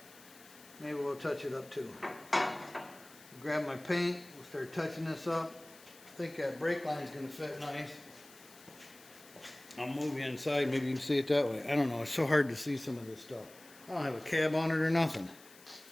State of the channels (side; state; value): left; noise; hiss, 22 dB below the sound